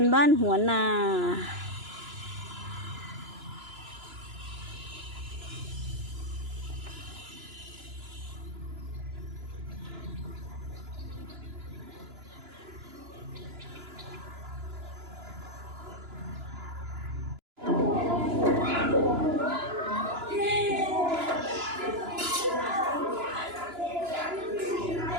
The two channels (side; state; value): left; late; 2.9 ms